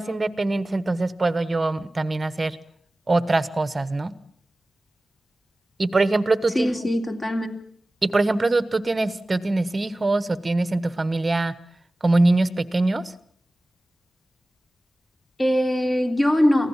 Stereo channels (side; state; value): both; normal; correlation 0.97